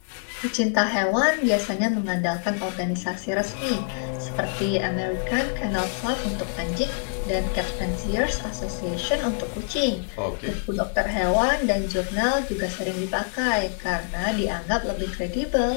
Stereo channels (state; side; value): silent; right; 61 dB below the other